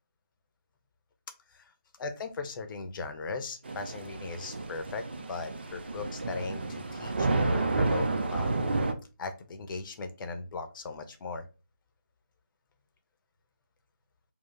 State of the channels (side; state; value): both; inverted; correlation -0.76